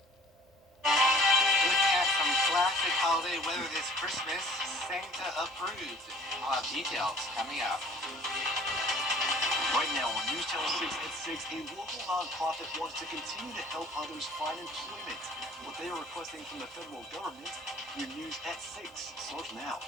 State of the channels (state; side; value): normal; both; correlation 0.50